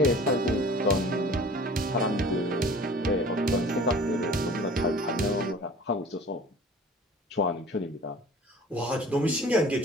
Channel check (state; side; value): normal; both; correlation 0.45